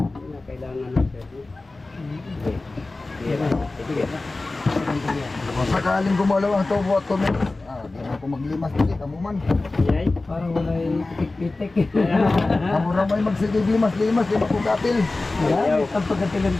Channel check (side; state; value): right; quieter; 3.2 dB